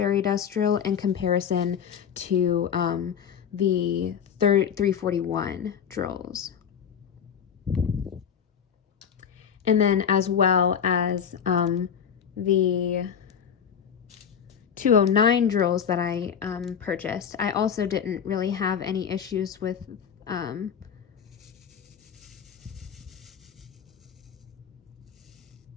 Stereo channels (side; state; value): right; quieter; 7.7 dB